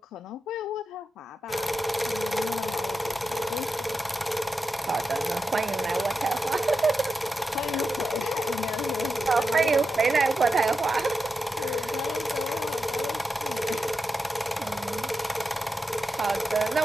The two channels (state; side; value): normal; both; correlation 0.89